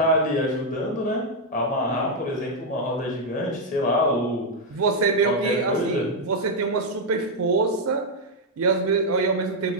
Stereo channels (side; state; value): both; normal; correlation -0.01